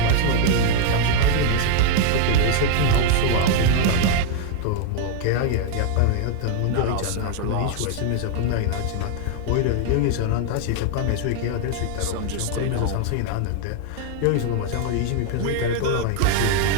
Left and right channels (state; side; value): different; both; correlation 0.00